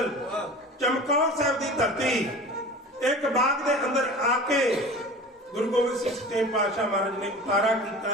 ਚਮਕੌਰ ਸਾਹਿਬ ਦੀ ਧਰਤੀ। ਇੱਕ ਬਾਗ ਦੇ ਅੰਦਰ ਆ ਕੇ ਗੁਰੂ ਗੋਬਿੰਦ ਸਿੰਘ ਸੱਚੇ ਪਾਤਸ਼ਾਹ ਮਹਾਰਾਜ ਨੇ ਉਤਾਰਾ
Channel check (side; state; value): both; normal; correlation 0.38